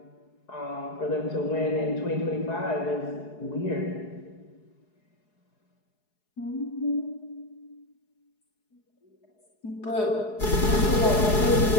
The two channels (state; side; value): late; right; 4.8 ms